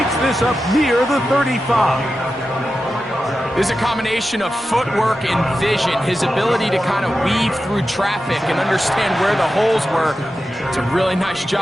this up near the 35. There's a combination of footwork and vision, his ability to kind of weave through traffic and understand where the holes were. It's a really nice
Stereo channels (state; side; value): normal; both; correlation 0.91